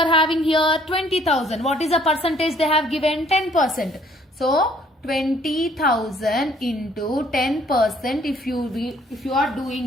having here? 20,000. What is the percentage they have given? 10%. So 20,000 into 10% if you are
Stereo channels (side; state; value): both; normal; correlation 0.62